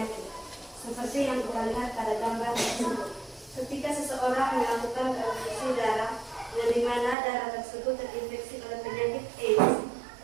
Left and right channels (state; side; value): drops out; left; at 7.2 s